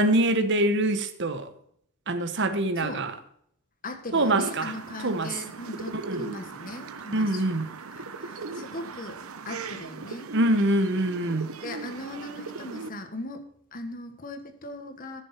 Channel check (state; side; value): normal; both; correlation 0.28